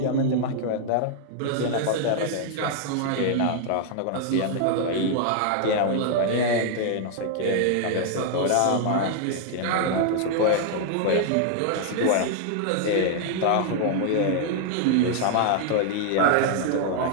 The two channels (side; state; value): both; different; correlation 0.00